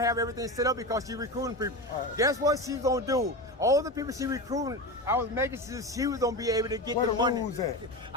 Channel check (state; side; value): normal; both; correlation 0.23